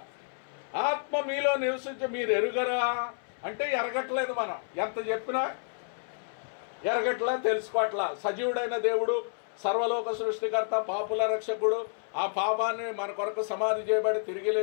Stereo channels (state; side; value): silent; right; 58 dB below the other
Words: ఆత్మ మీలో నివసించి మీరు ఎరుగరా అంటే ఎరగట్లేదు. మనం ఎంత చెప్పినా ఎరగట్లా, తెలుసుకోవట్లా. సజీవుడైన దేవుడు, సర్వలోక సృష్టికర్త, పాపుల రక్షకుడు, ఆ పాపాన్ని మన కొరకు సమాధి చేయబడి తిరిగి